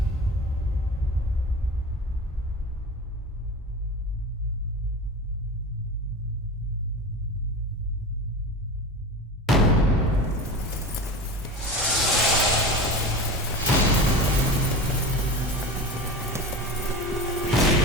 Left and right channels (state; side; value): normal; both; correlation 0.31